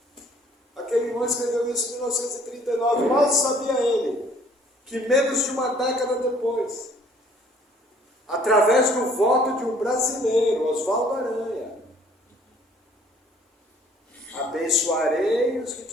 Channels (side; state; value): both; normal; correlation 0.58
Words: Aquele irmão escreveu isso em 1939. Mal sabia ele que menos de uma década depois, através do voto de um brasileiro, Oswaldo Aranha, abençoarei os que